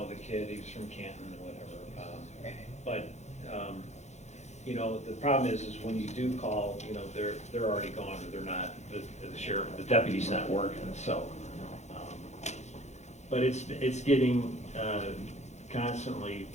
kid, he's from Canton or whatever. But the problem is when you do call, they're already gone, or they're not. The sheriff, the deputy's not working. So, but it's getting constantly,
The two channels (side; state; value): right; late; 0.33 ms